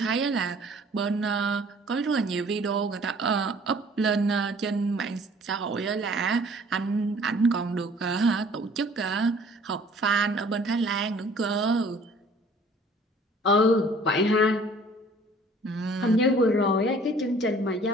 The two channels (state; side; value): normal; both; correlation 0.53